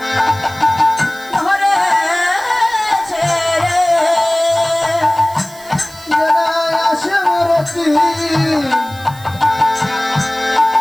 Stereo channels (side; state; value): right; noise; hiss, 20 dB below the sound